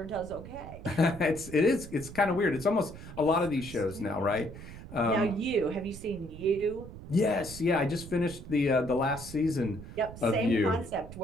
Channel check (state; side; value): noise; right; rumble, 14 dB below the sound